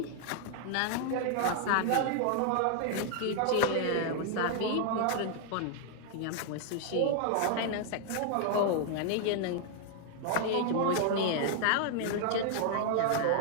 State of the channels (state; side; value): different; both; correlation 0.00